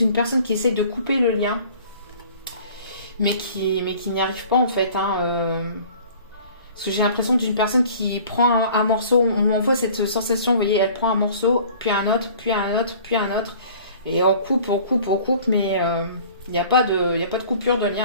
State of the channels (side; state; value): both; inverted; correlation -0.49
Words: personne qui essaie de couper le lien, mais qui n'y arrive pas en fait. Hein, Parce que j'ai l'impression d'une personne qui prend un morceau, on m'envoie cette sensation, vous voyez, elle prend un morceau, puis un autre, puis un autre, puis un autre. Et on coupe, mais il n'y a pas de coupure de